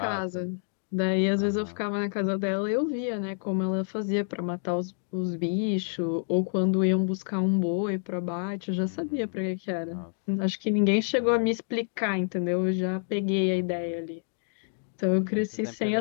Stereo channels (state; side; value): silent; right; digital silence